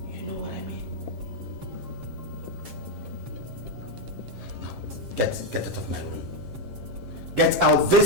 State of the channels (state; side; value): late; left; 7.6 ms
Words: You know what I mean? Get out of my room. Get out